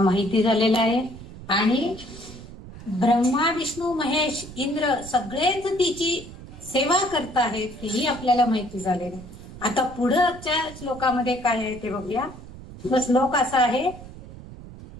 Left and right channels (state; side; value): noise; right; rumble, 15 dB below the sound